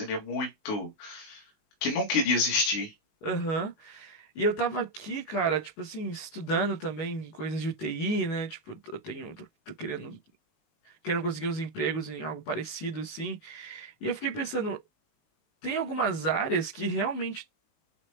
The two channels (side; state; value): right; late; 19 ms